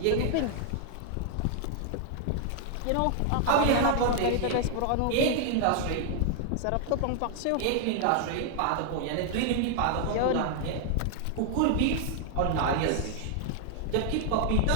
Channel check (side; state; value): both; different; correlation 0.00